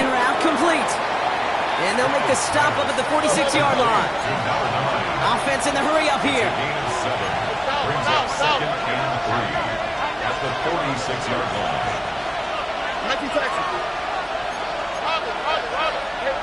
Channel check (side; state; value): both; identical; correlation 1.00